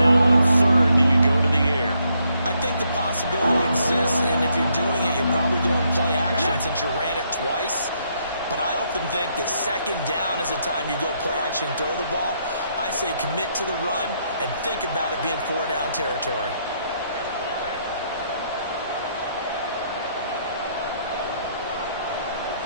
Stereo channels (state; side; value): inverted; both; correlation -0.74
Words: on 3rd, do you go to the air? I think the possibility exists, and if you're doing it, you're probably going play action since you ran it twice. But I often think that 2nd down is a time you go play action and throw the ball. I say commit to the run and think about it being 4-down territory.